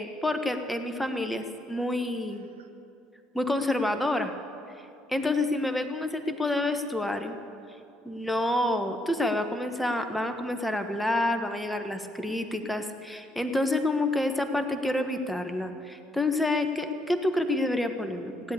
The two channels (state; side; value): normal; both; correlation 0.75